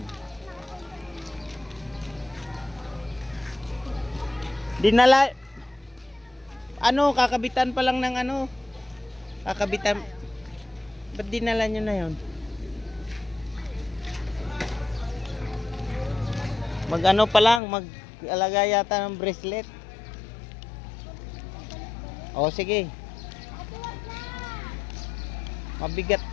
Dinala. Ano, kakabitan pa lang ng ano. Kakabitan. Ba't dinala nyo na yun? Mag ano pa lang, mag-alaga yata ng bracelet. O sige. Mabigat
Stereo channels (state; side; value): drops out; right; at 17.6 s